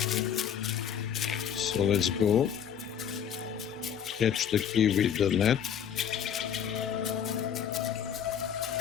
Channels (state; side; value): quieter; right; 8.5 dB